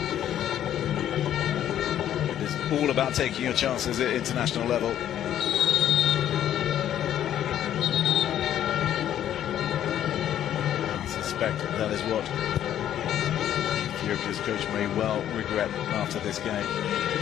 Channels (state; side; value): quieter; right; 11.0 dB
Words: It's all about taking your chances at international level. That is what Ethiopia's coach may well regret after this game.